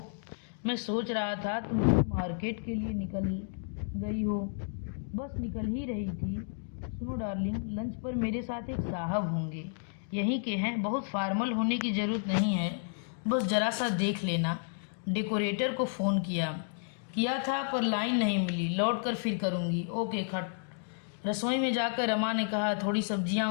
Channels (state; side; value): silent; right; digital silence